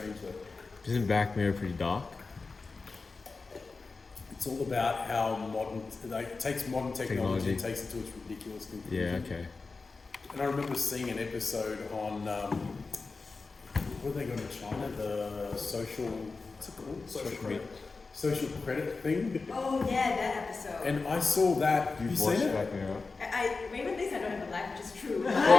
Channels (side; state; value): right; quieter; 4.1 dB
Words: though. Isn't Black Mirror pretty dark? It's all about how modern, like, it takes modern technology and Technology. takes it to its ridiculous conclusion. Yeah, okay. And I remember seeing an episode on, what are they going to China? The social, what's it called? Social media. social credit thing, Oh yeah, that episode. and I saw that. You've You watched seen it? Black Mirror. Raymond thinks I don't have a life, which is true.